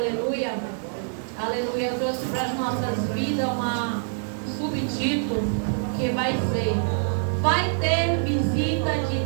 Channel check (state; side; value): silent; left; digital silence